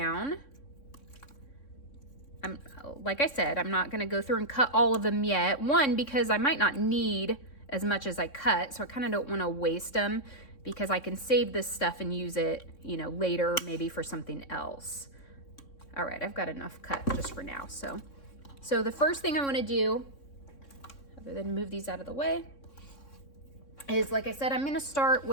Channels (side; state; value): right; late; 3.6 ms